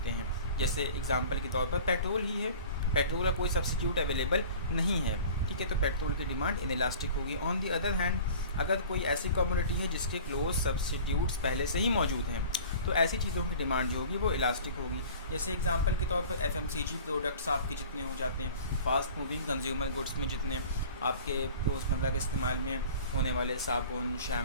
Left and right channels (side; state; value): both; inverted; correlation -0.43